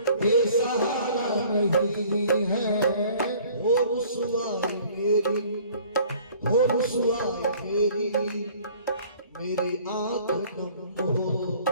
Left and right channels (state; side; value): inverted; both; correlation -0.53